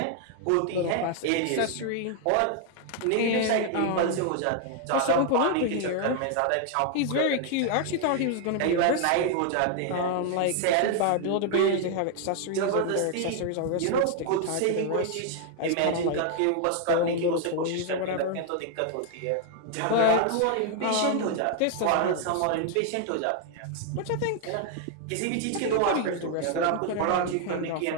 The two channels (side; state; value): both; different; correlation 0.00